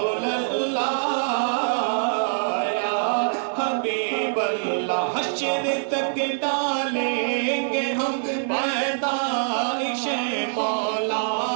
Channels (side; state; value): left; silent; digital silence